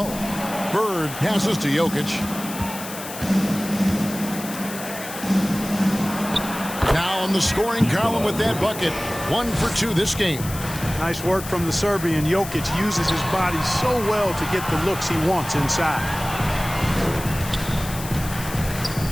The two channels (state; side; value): noise; left; hiss, 11 dB below the sound